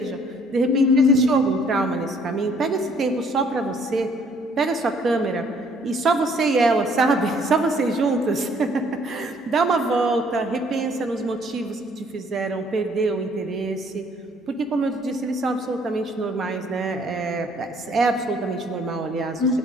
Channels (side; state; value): both; normal; correlation 0.62